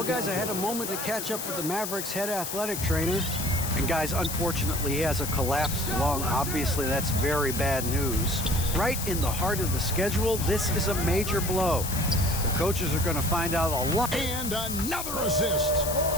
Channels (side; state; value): left; noise; hiss, 5 dB below the sound